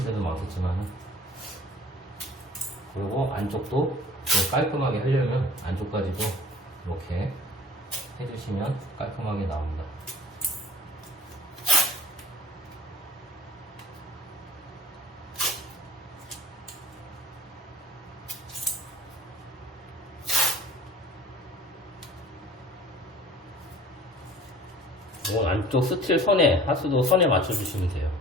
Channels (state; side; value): normal; both; correlation 0.46